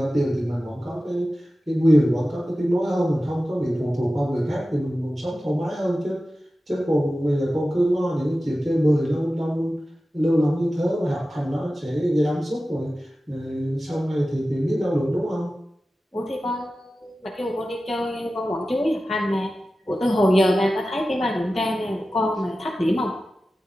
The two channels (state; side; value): normal; both; correlation 0.94